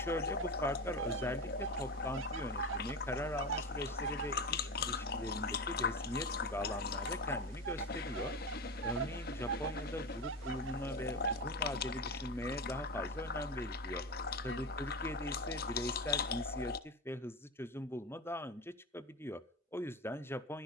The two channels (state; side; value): normal; both; correlation 0.22